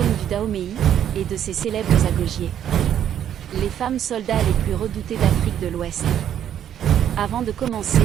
du Dahomey et de ses célèbres agogiers. Les femmes soldats les plus redoutées d'Afrique de l'Ouest. Avant de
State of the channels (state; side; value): quieter; left; 10.0 dB